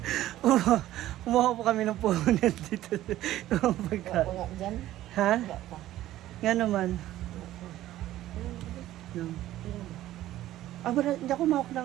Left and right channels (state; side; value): quieter; left; 14.2 dB